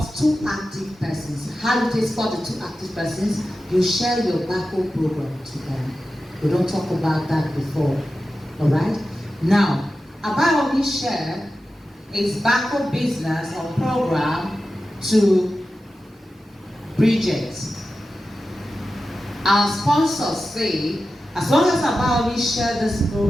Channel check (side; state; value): both; normal; correlation 0.93